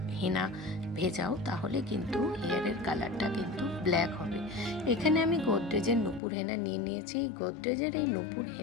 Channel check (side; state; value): right; drops out; at 6.2 s